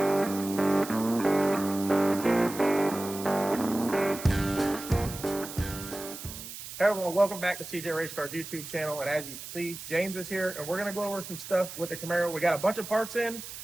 Hey everyone, welcome back to CJRaceCars YouTube channel. And as you see, James is here, and we're going to go over some stuff with the Camaro. We got a bunch of parts in, and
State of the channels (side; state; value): right; noise; hiss, 11 dB below the sound